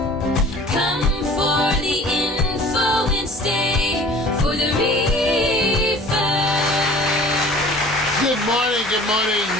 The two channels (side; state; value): both; normal; correlation 0.47